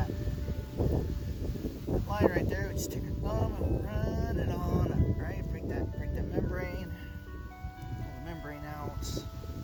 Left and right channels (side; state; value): both; identical; correlation 1.00